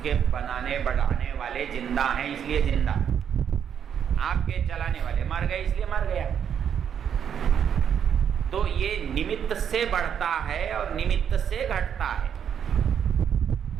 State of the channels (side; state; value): left; quieter; 8.3 dB